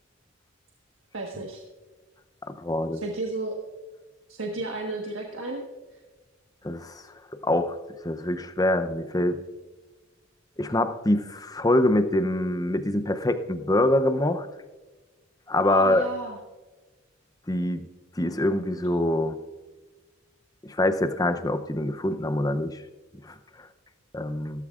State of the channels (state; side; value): normal; both; correlation 0.64